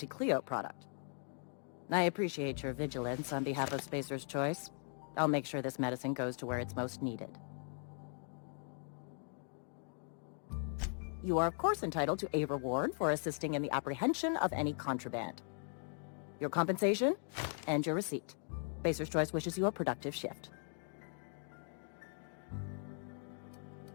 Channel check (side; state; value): right; silent; 52 dB below the other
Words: product. I appreciate your vigilance on behalf of Spacer's Choice. I'll make sure this medicine goes to where it's most needed. You are of course entitled to a reward for assisting in the apprehension of any contraband. Your compensation and your receipt. Spacer's Choice wishes you a productive shift.